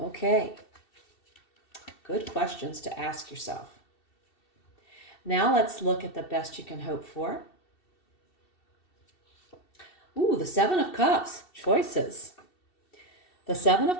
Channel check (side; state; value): right; late; 2.7 ms